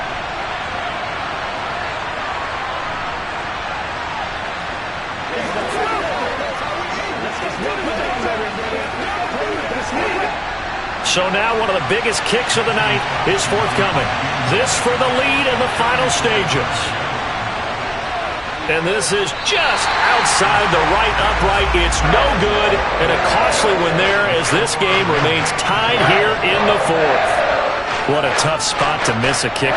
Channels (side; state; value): both; identical; correlation 1.00